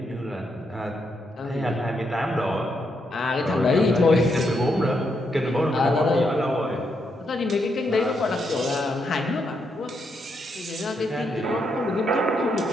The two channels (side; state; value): both; normal; correlation 0.79